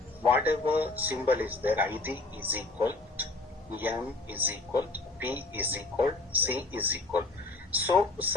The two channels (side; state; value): right; quieter; 3.1 dB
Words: whatever symbol is there. ID is equal to, M is equal to, P is equal to, C is equal. So